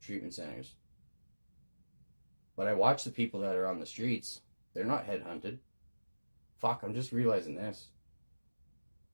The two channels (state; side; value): inverted; both; correlation -1.00